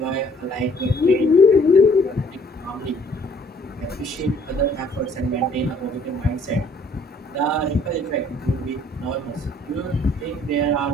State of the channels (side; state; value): both; normal; correlation 0.59